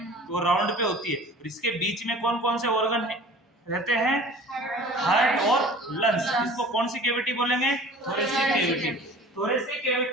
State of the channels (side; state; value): both; normal; correlation 0.44